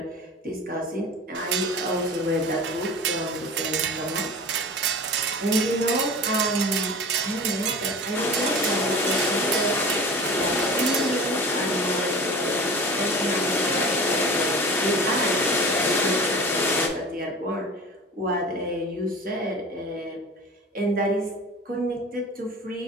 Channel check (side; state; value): both; normal; correlation 0.36